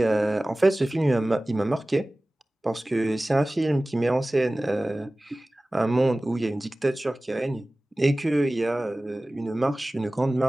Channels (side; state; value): both; normal; correlation 0.98